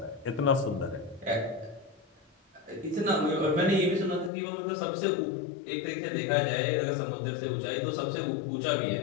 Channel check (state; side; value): drops out; right; at 4.3 s